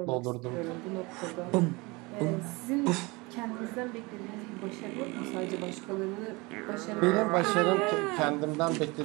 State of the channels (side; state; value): left; quieter; 25.2 dB